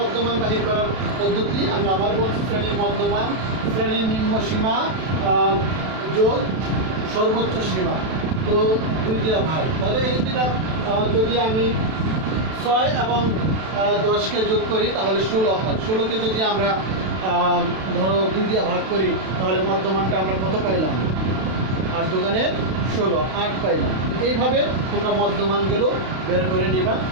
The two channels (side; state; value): left; late; 32 ms